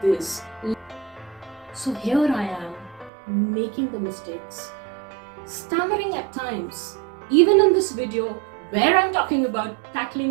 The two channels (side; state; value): left; drops out; at 3.1 s